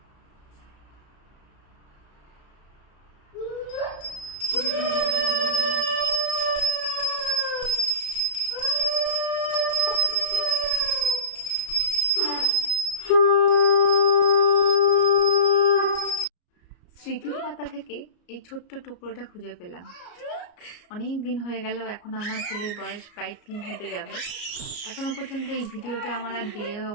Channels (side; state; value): right; late; 34 ms